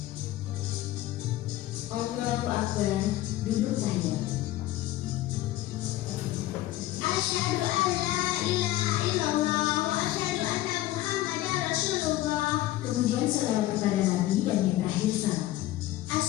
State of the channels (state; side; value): quieter; right; 15.4 dB